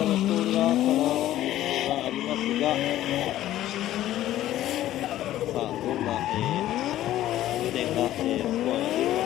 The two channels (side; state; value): right; quieter; 13.7 dB